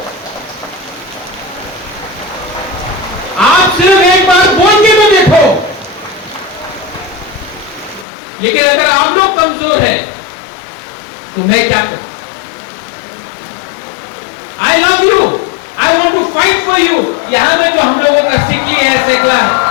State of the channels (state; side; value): drops out; right; at 8.1 s